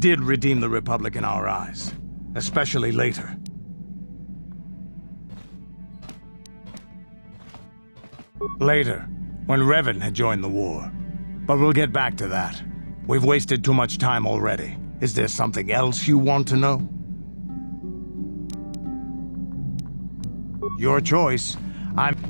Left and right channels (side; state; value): both; inverted; correlation -1.00